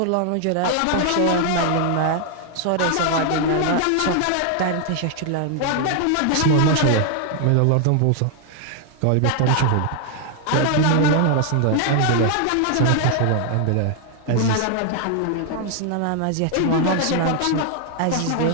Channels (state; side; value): different; both; correlation 0.00